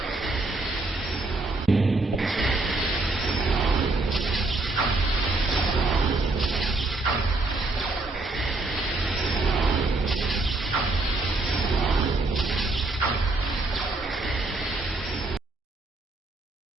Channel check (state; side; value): quieter; left; 3.1 dB